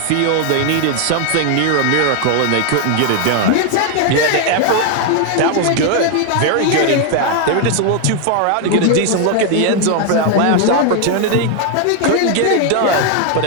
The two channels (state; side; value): different; both; correlation 0.00